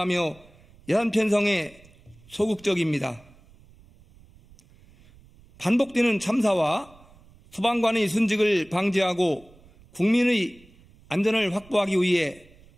예산 편성에 소극적입니다. 반복되는 참사와 소방관의 순직을 방지하고 국민의 안전을 확보하기 위해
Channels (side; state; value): right; noise; rumble, 26 dB below the sound